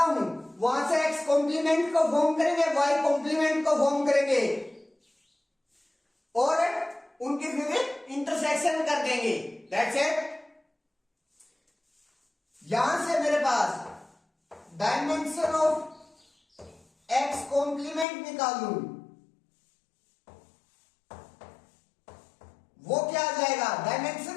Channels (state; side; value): drops out; right; at 18.1 s